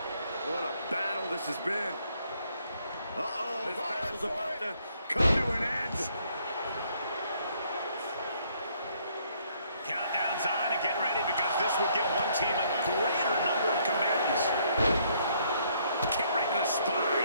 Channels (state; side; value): inverted; both; correlation -0.68